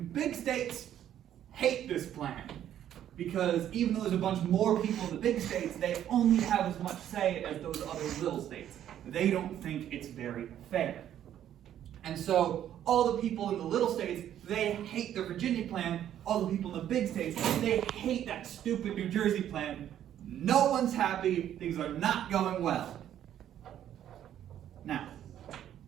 big states hate this plan, because even though there's a bunch more people in the big states, they only have as much say as those other little states. They don't think it's very fair. And so all the people in the little states, they hate the Virginia Plan. All the people in the big states, they hate that stupid New Jersey Plan. No one's happy. Things are not going well. Now,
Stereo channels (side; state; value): left; quieter; 10.9 dB